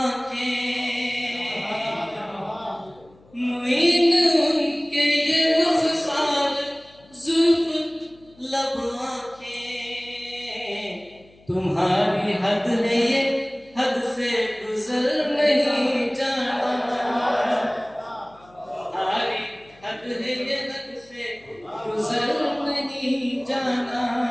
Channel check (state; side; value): noise; left; hum, 28 dB below the sound